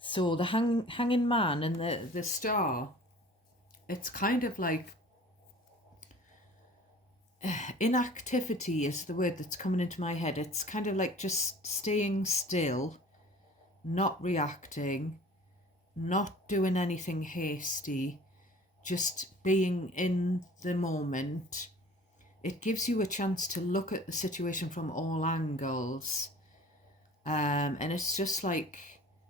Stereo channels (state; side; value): normal; both; correlation 0.46